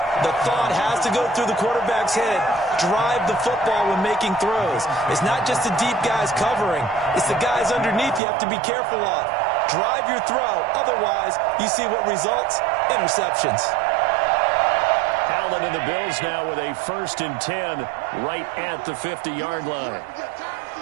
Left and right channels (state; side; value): drops out; left; at 8.2 s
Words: the thought has to go through the quarterback's head. Drive the football when making throws. It's not just the deep guys covering. It's the guys underneath you have to be careful of. Drive your throw. Otherwise, you see what results? Interceptions. Allen and the Bills now with a 1st and 10 right at the 50-yard line.